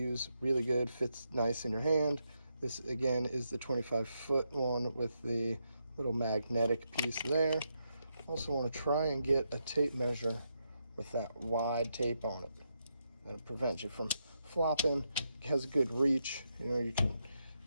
Really good, fits nice in your hand. This again is the 25-foot one with the little magnetic piece there. Also want to try and get a tape measure with that wide tape on it. That'll prevent you from flopping. It has a good reach. You know, you can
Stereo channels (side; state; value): both; inverted; correlation -0.82